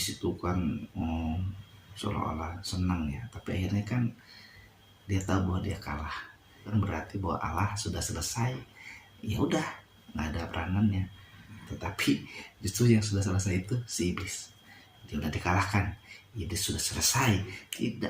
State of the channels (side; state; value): both; identical; correlation 1.00